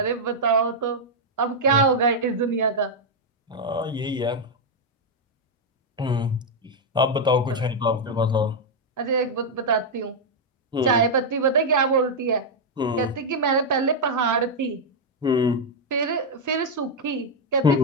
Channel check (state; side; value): normal; both; correlation -0.01